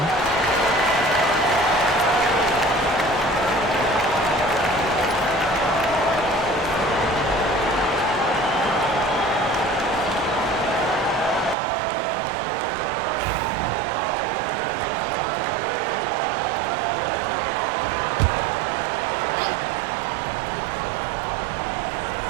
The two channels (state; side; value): drops out; left; at 11.6 s